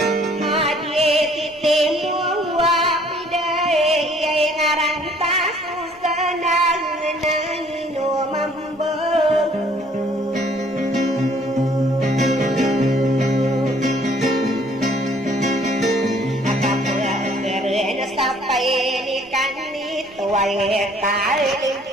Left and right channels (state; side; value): normal; both; correlation 0.59